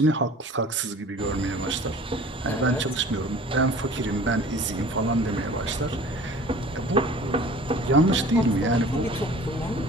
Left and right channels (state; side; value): normal; both; correlation 0.45